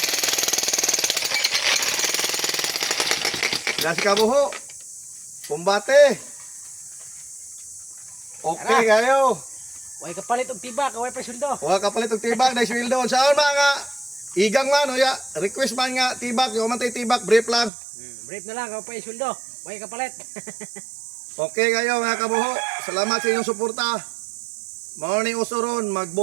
Nasi kabuho. Kumbate. Okay kayo. Way kapalit og tibak, way presuldo. Wala kapalit og tibak na sweldo. Saan mga igang man o ya, request man nga tibak, yung man tay tibak, brief lang. Brief na lang, way presuldo. Way kapalit. Okay kayo mga kabuho. Salamat sa inyong suporta. Mao ni usuron,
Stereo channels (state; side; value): drops out; left; at 17.7 s